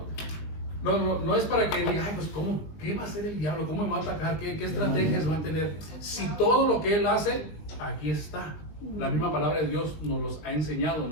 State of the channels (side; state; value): right; late; 20 ms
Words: es para que diga, ay, pues ¿qué va a hacer el diablo? ¿Cómo me va a atacar? ¿Qué estrategias va a tener? Si todo lo que él hace, aquí está. La misma palabra de Dios nos los ha enseñado,